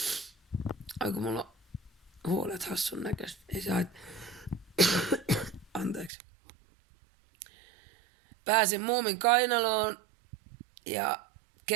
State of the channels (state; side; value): drops out; left; at 6.1 s